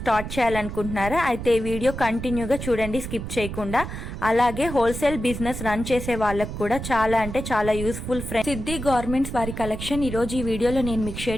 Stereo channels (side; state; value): right; noise; rumble, 7 dB below the sound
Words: చేయాలనుకుంటున్నారా? అయితే ఈ వీడియో కంటిన్యూగా చూడండి, స్కిప్ చేయకుండా. అలాగే హోల్సేల్ బిజినెస్ రన్ చేసే వాళ్ళకు కూడా చాలా అంటే చాలా యూస్ఫుల్ ఫ్రెండ్స్. సిద్ధి గార్మెంట్స్ వారి కలెక్షన్ ఈ రోజు ఈ వీడియోలో నేను మీకు